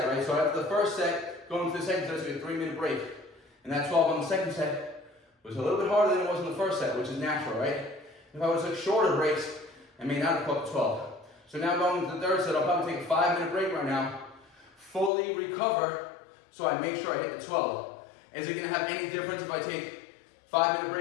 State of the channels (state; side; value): drops out; right; at 15.1 s